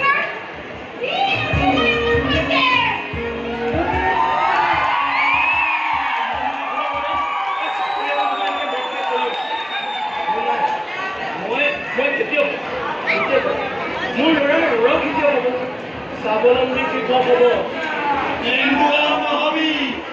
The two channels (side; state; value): both; identical; correlation 1.00